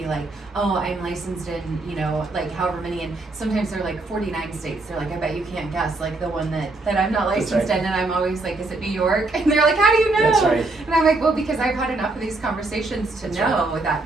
like, oh, I'm licensed in, like however many, and sometimes they're like 49 states. They're like, I bet you can't guess, like the one that I'm not That's licensed right. in, and I'm always like, is it New York? And they're like, how do you know? That's right. And I'm like, well, because I've had enough of these conversations to That's know that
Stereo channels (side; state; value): left; quieter; 3.1 dB